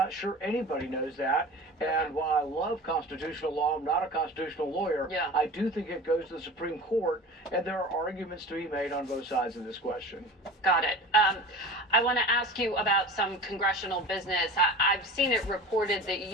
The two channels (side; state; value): both; normal; correlation 0.36